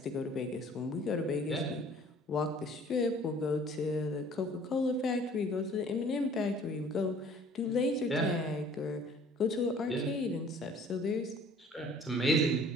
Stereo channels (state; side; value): normal; both; correlation 0.53